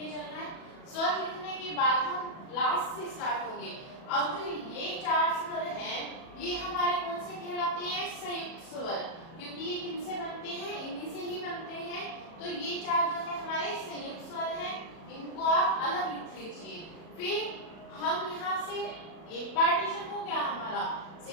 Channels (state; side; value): late; right; 37 ms